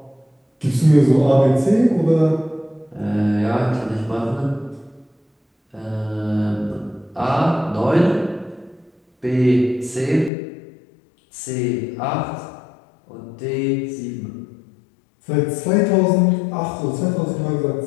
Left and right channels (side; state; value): right; drops out; at 10.3 s